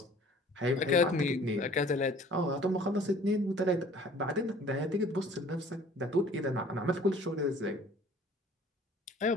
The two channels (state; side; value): normal; both; correlation 0.51